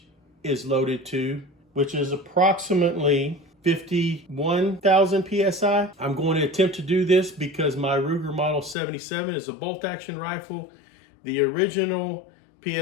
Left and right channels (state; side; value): drops out; right; at 8.8 s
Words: is loaded to, which is approximately 51,000 PSI. I'm going to attempt to do this because my Ruger Model 77 is a bolt action rifle. The original